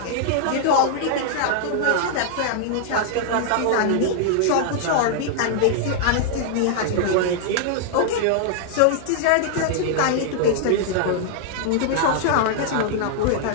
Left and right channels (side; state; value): both; different; correlation -0.01